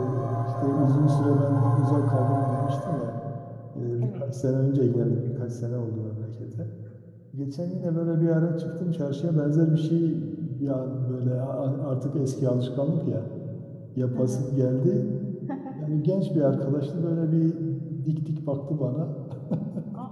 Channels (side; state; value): both; identical; correlation 1.00